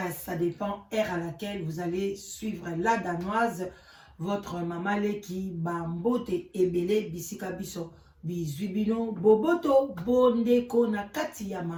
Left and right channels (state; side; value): identical; both; correlation 1.00